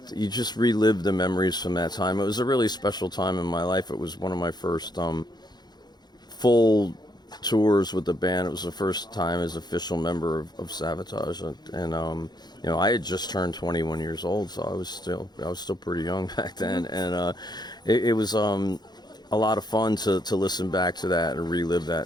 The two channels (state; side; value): late; right; 0.20 ms